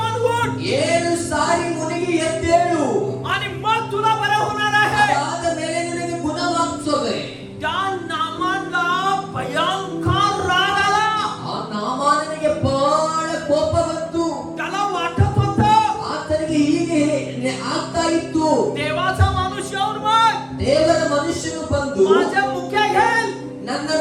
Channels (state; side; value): identical; both; correlation 1.00